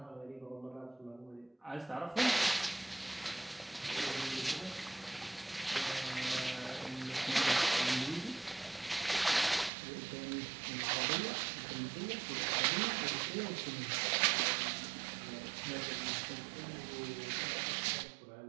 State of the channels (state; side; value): drops out; left; at 9.7 s